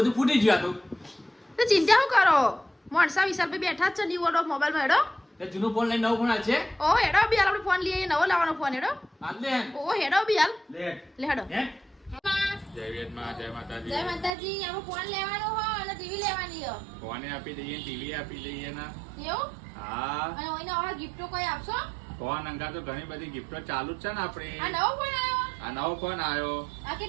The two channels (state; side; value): drops out; left; at 14.3 s